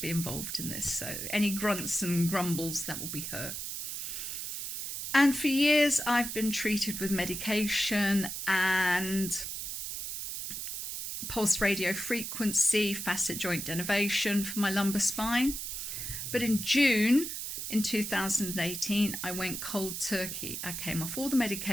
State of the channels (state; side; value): noise; right; hiss, 5 dB below the sound